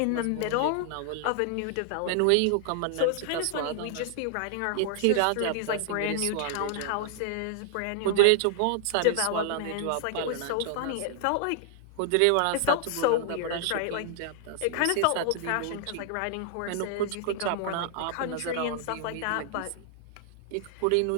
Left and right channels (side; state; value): both; different; correlation -0.01